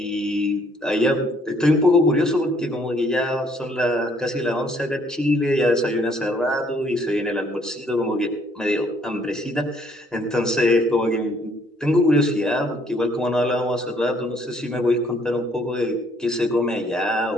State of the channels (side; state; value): both; normal; correlation 0.64